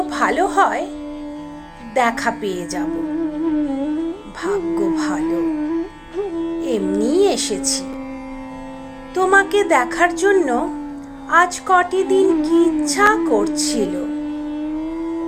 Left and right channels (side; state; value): both; identical; correlation 1.00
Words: ভালো হয় দেখা পেয়ে যাব। ভাগ্য ভালো, এমনি এসেছি। তোমাকে দেখার জন্য আজ কটি দিন কি ইচ্ছা করছিল।